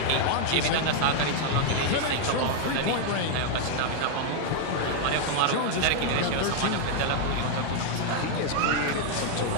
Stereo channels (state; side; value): different; both; correlation 0.00